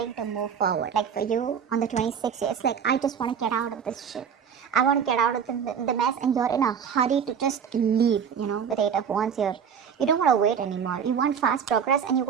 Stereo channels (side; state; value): left; quieter; 7.4 dB